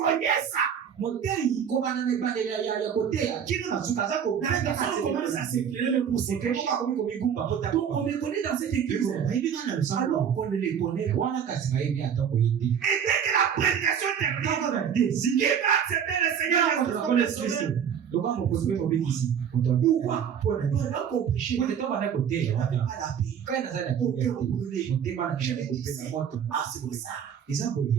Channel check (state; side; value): quieter; left; 8.0 dB